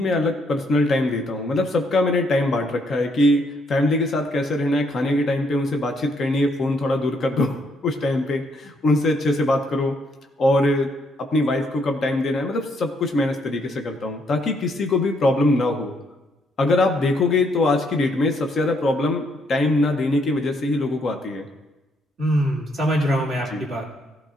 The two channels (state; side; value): normal; both; correlation 0.72